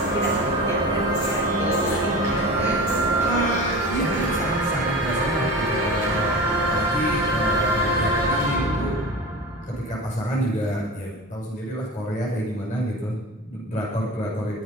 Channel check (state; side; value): normal; both; correlation 0.32